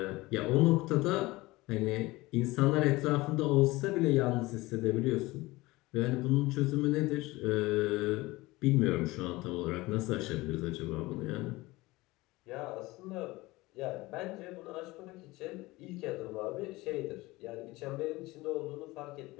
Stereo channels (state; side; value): quieter; right; 20.6 dB